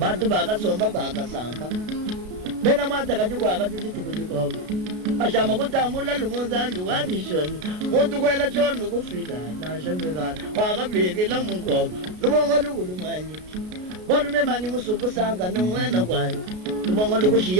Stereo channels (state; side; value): late; left; 33 ms